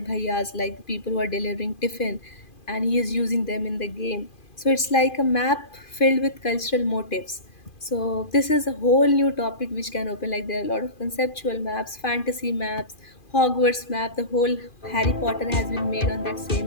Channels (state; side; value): late; right; 2.4 ms